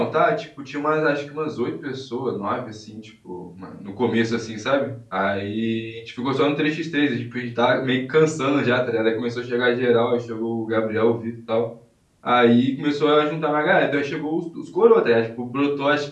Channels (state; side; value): identical; both; correlation 1.00